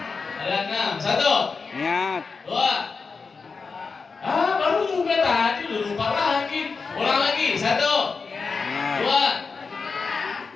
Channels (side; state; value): right; quieter; 4.8 dB